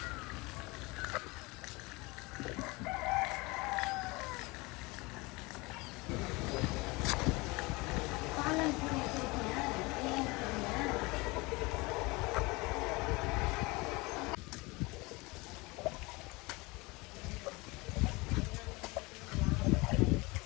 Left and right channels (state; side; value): quieter; right; 24.6 dB